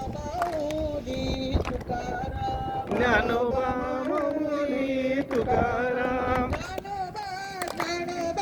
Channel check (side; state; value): both; identical; correlation 1.00